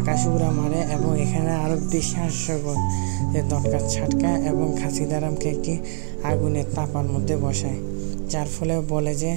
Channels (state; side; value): silent; left; 56 dB below the other